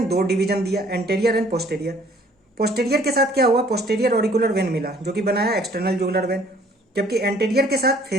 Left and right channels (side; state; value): both; normal; correlation 0.58